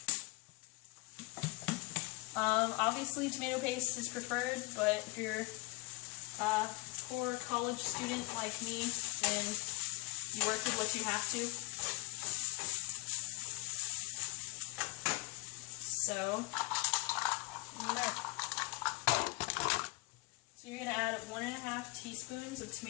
Obviously tomato paste is preferred, but if you're a poor college student like me, then you work with what you have to. So you're going to add 1.5 teaspoons of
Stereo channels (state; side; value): quieter; right; 25.2 dB